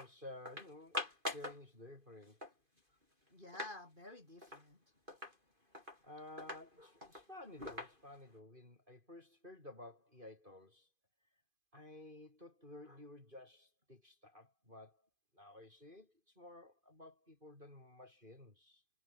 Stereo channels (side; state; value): left; late; 2.5 ms